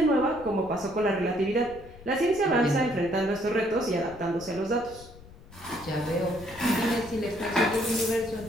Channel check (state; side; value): noise; left; rumble, 19 dB below the sound